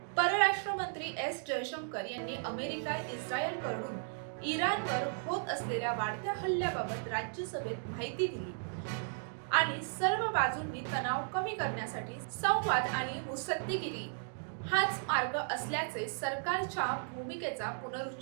परराष्ट्र मंत्री एस जयशंकर यांनी अमेरिका इस्रायलकडून इराणवर होत असलेल्या वाढत्या हल्ल्याबाबत राज्यसभेत माहिती दिली आणि सर्व बाजूंनी तणाव कमी करण्यासाठी संवाद आणि मुत्सद्देगिरी हाच मार्ग असल्याचे सरकारच्या भूमिकेचा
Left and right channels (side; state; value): left; silent; digital silence